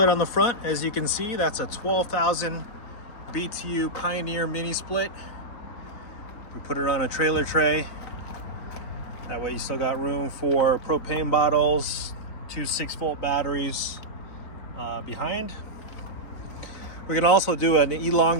on the front. As you can see, that's a 12,000 BTU Pioneer mini split. We put it on a trailer tray. That way you still got room for propane bottles, two 6-volt batteries behind. We can also do an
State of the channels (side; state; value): right; late; 3.9 ms